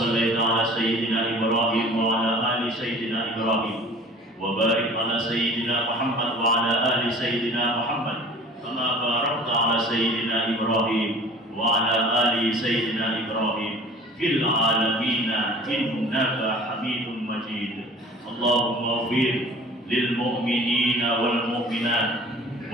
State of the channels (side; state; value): both; normal; correlation 0.46